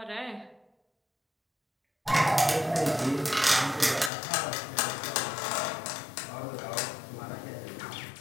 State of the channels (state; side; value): drops out; right; at 4.1 s